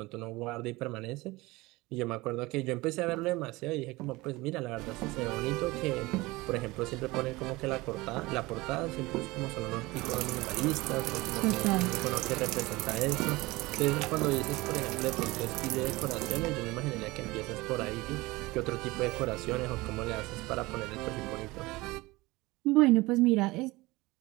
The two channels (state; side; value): quieter; left; 21.3 dB